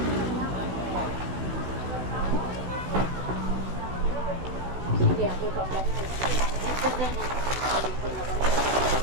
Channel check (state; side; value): late; left; 16 ms